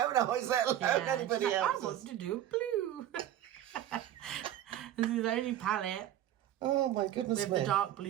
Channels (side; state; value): left; quieter; 11.9 dB